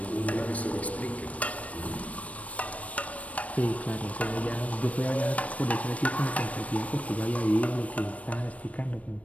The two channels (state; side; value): late; right; 0.067 ms